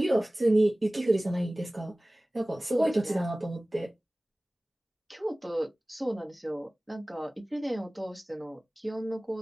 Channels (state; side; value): normal; both; correlation 0.98